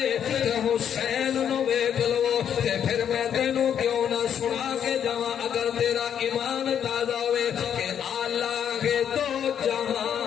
تے حسین نو ویکھ لو تے پھر میں تینوں کیوں نہ سنا کے جاواں اگر تیرا ایمان تازہ ہوے کہ اعلیٰ ہے دو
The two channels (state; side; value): quieter; right; 8.9 dB